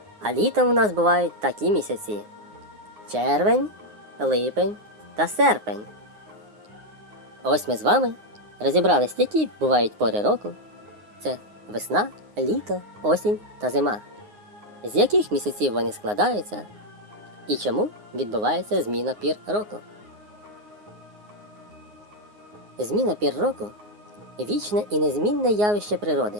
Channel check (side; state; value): left; late; 9.6 ms